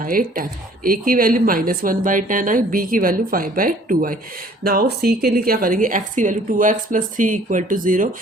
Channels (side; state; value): both; normal; correlation 0.55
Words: ए की वैल्यू -1/10 आई, बी की वैल्यू 5/2 आई। नाउ सी के लिए क्या करेंगे? एक्स की value 2x plus 3 equal to 0,